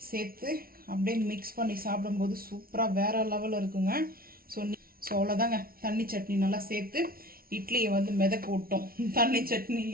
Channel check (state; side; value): late; left; 0.43 ms